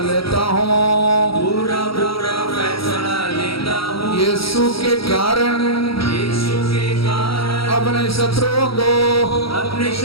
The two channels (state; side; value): late; right; 0.75 ms